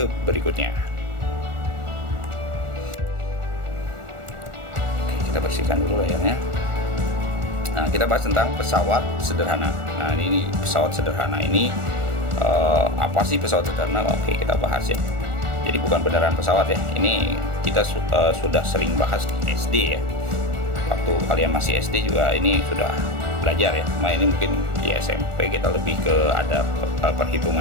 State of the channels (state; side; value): late; left; 1.4 ms